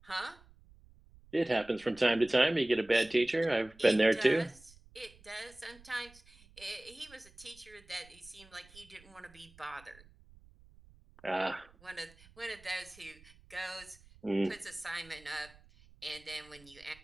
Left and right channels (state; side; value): noise; right; rumble, 25 dB below the sound